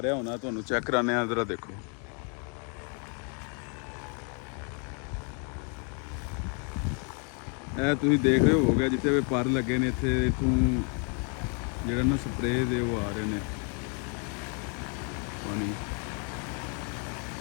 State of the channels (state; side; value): quieter; right; 38.8 dB